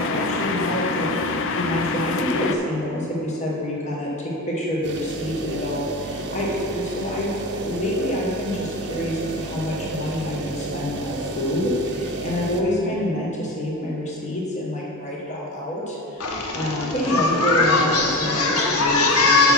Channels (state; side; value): normal; both; correlation 0.28